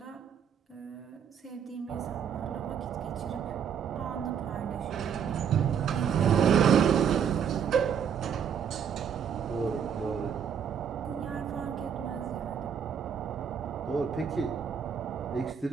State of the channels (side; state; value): left; quieter; 7.8 dB